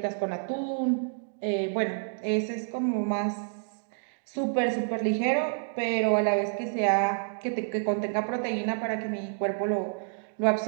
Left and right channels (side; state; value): left; silent; digital silence